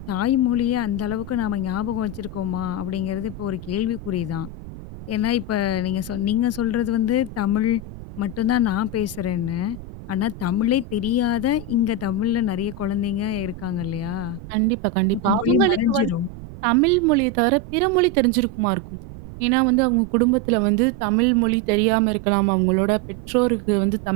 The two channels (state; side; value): noise; right; rumble, 14 dB below the sound